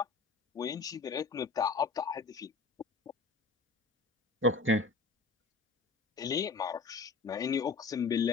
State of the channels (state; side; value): quieter; right; 4.1 dB